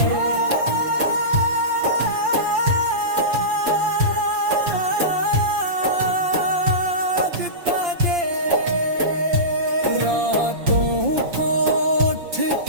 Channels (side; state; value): left; late; 5.8 ms